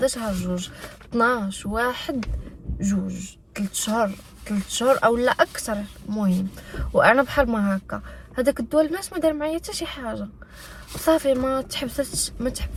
شهر 2، 12 1 2 3 شهور او لا اكثر. المهم وانا بحال ما هكا هذاك الدواء البنات ما دار معايا حتى شي حاجه. صافي ما تحبستش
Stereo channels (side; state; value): both; identical; correlation 1.00